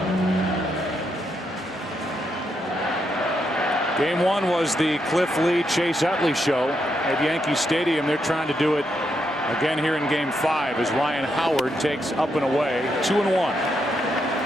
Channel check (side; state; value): both; normal; correlation 0.80